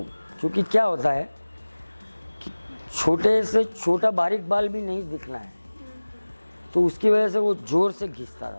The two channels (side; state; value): both; inverted; correlation -1.00